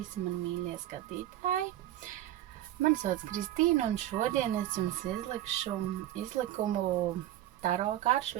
mani mīļie skatītāji. Mani sauc Kristīna un šodien es jums izlikšu izlikumu, taro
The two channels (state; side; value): quieter; left; 13.4 dB